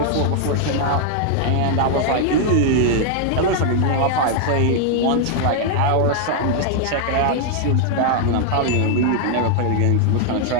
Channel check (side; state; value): both; different; correlation 0.00